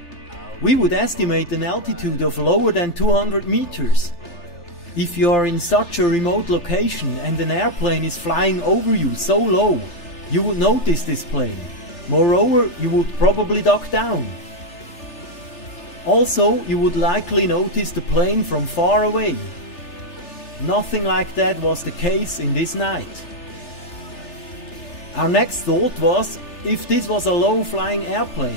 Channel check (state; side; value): late; right; 3.3 ms